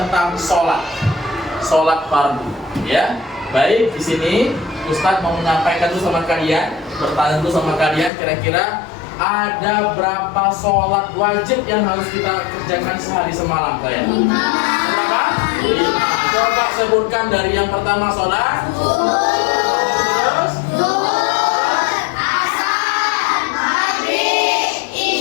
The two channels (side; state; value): right; drops out; at 8.1 s